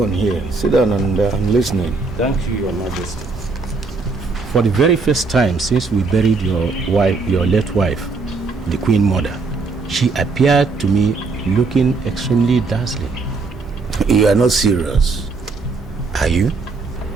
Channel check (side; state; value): left; quieter; 4.1 dB